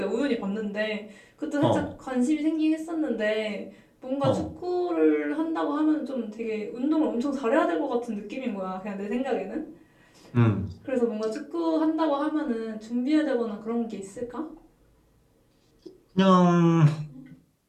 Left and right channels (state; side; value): identical; both; correlation 1.00